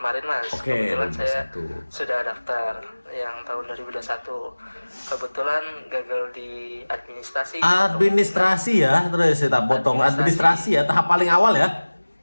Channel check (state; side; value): inverted; both; correlation -1.00